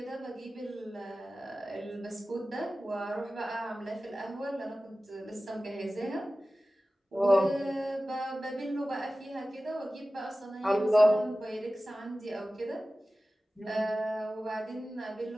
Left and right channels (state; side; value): normal; both; correlation 0.96